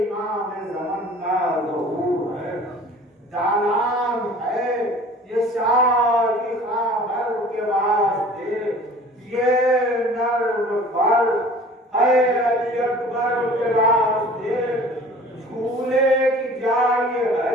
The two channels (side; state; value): both; normal; correlation 0.46